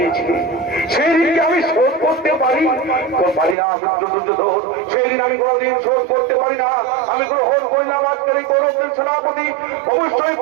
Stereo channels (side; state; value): left; drops out; at 3.6 s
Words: সেই দিনকে আমি শোধ করতে পারি না মিত্র দুর্যোধন, সেই দিন আমি কোনোদিন শোধ করতে পারি না। আমি গ্রহণ করলাম আজকের এই কৌরবদের সেনাপতি, অবশ্যই